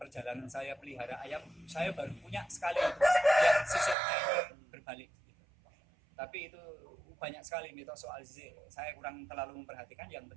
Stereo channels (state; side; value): drops out; left; at 4.0 s